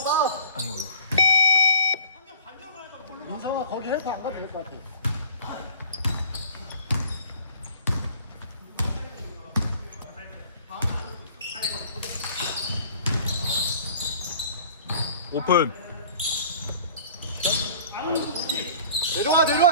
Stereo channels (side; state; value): both; inverted; correlation -0.49